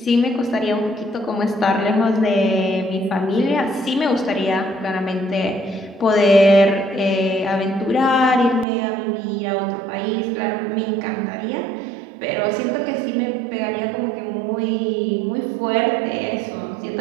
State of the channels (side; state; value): left; drops out; at 8.7 s